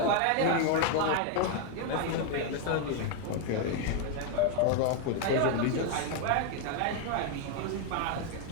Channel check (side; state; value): both; different; correlation 0.00